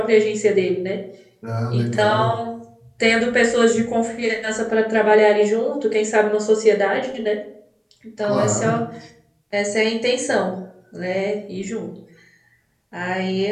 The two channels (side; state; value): both; identical; correlation 1.00